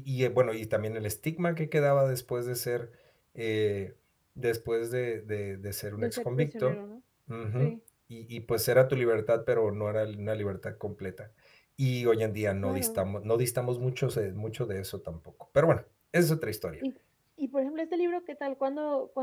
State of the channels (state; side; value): identical; both; correlation 1.00